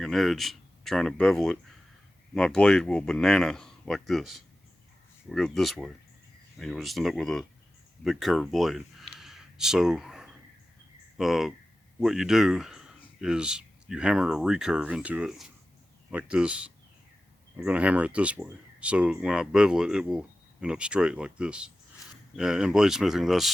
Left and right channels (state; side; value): normal; both; correlation 0.94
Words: an edge, trying to bevel it, my blade will banana like this. We'll go this way, and you'll just end up with a big curved blade. So what you do is you hammer a recurve into it like this. I'm going to hammer it this way, so when I bevel it, it will end up straight like this. In bladesmithing,